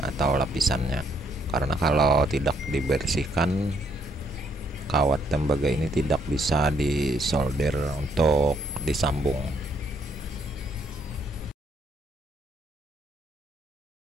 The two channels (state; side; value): normal; both; correlation 0.71